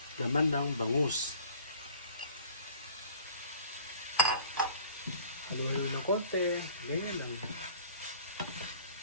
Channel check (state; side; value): inverted; both; correlation -0.50